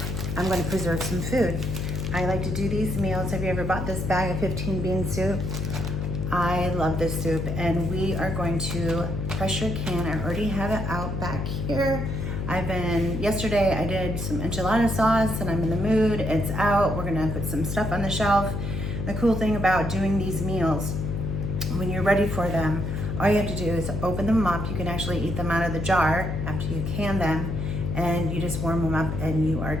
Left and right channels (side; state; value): left; noise; hum, 3 dB below the sound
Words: I'm going to preserve some food. I like to do these meals. Have you ever bought this bag of 15 bean soup? I love this soup, and we are going to pressure can. I already have it out back here. Yesterday I did some enchilada sauce and I'm in the mood. It's out. We're gonna put some stuff on the shelf. The cool thing about doing these meals, when you're ready for them, all you have to do is open them up. You can actually eat them out of the jar after you can them, and you just warm them up and you are